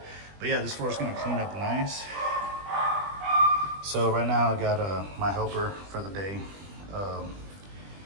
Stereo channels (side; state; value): left; late; 20 ms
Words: But yeah, this floor is gonna clean up nice. So right now I got my helper for the day